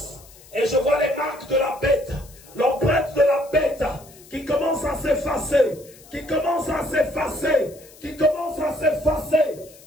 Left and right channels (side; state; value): left; noise; hiss, 23 dB below the sound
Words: Et je vois les marques de la bête, l'empreinte de la bête qui commence à s'effacer, qui commence à s'effacer, qui commence à s'effacer,